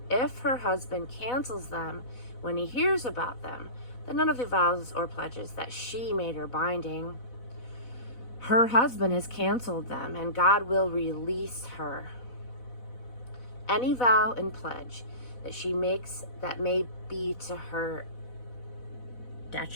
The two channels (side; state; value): right; late; 4.1 ms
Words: if her husband cancels them when he hears about them, then none of the vows or pledges that she made are binding. Her husband has canceled them, and God will release her. Any vow and pledge that she makes that may be to her